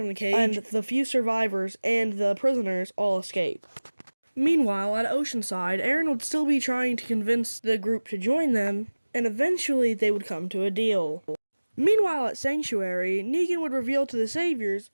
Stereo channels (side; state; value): both; inverted; correlation -1.00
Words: the cage, and the few survivors and the prisoners all escape. Meanwhile, at Oceanside, Aaron would still be trying to convince the group to join them, and eventually they would come to a deal. Meanwhile, at Sanctuary, Negan would reveal to the saviors